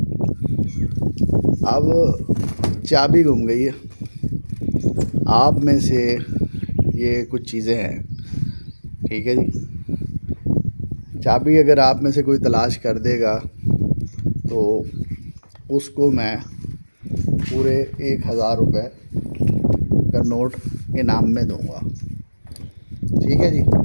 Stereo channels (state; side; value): inverted; both; correlation -1.00